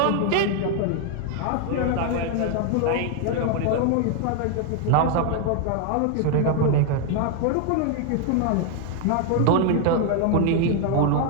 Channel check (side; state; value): both; different; correlation 0.00